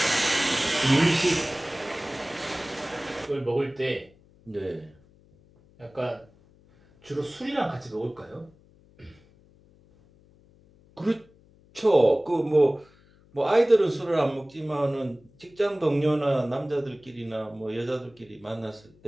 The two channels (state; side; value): noise; left; hum, 29 dB below the sound